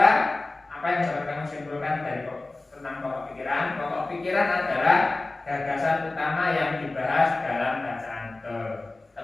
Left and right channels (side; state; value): right; quieter; 3.1 dB